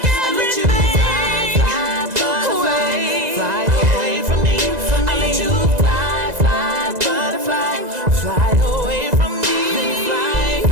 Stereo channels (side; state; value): left; late; 2.0 ms